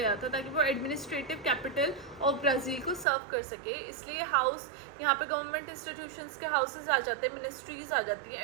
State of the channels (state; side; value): drops out; left; at 3.1 s